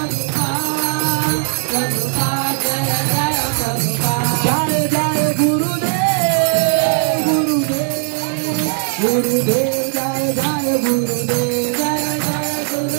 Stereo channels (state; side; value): silent; left; 64 dB below the other